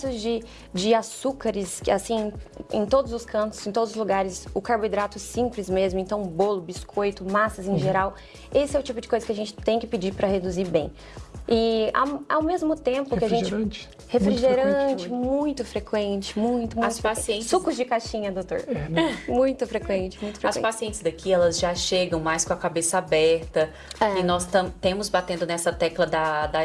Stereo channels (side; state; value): both; identical; correlation 1.00